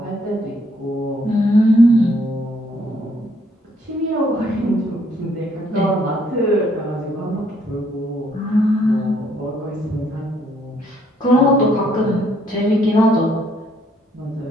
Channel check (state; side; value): normal; both; correlation 0.67